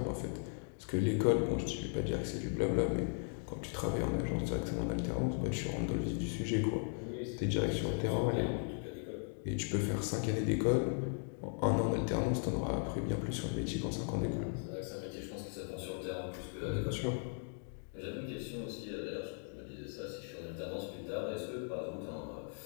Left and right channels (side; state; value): right; silent; 53 dB below the other